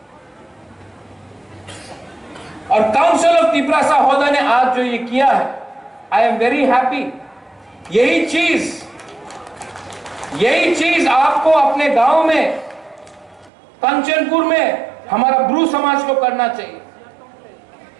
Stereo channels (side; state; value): left; drops out; at 13.5 s